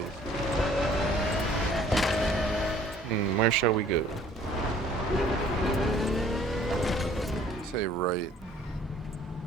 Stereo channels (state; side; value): normal; both; correlation 0.56